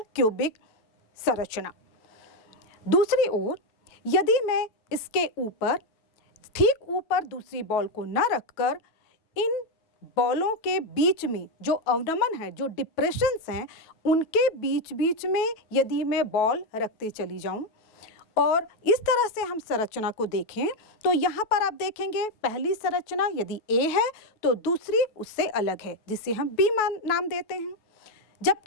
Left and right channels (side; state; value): right; late; 9.2 ms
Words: क्यूबिक संरचना। दूसरी ओर यदि मैं इसके ऊपर ठीक ऊपर दूसरी बॉल को न रखकर इन बॉलों के बीच में जो अवनमन है, जो डिप्रेशंस हैं, उनके बीच बीच में यदि मैं बॉल रखते चली जाऊं और इस तरह से हम संरचना को देखें तो यहाँ पर आप देखेंगे पहली संरचना यदि ए है तो दूसरी उससे अलग है जिसे हम बी नाम देते हैं,